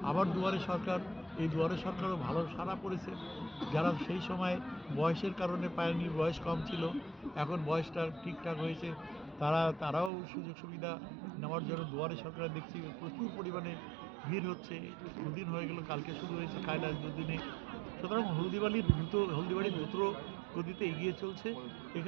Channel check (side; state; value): left; drops out; at 10.1 s